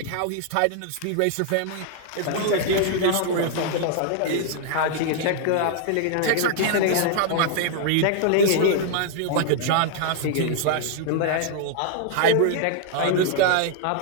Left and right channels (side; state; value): both; different; correlation 0.00